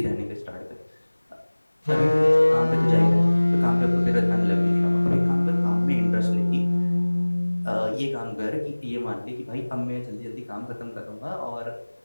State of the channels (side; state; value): both; inverted; correlation -1.00